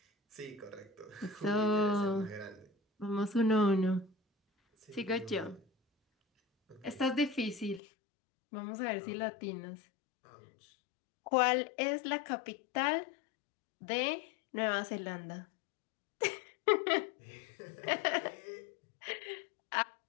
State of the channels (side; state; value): right; drops out; at 7.8 s